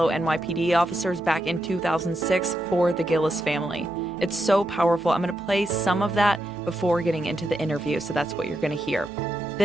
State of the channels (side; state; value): right; noise; hum, 25 dB below the sound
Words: NYPD officers back in 2006 for the Gillis family. It's so powerful. I'm going to play some of that before getting into the interview, so that's what you're going to hear.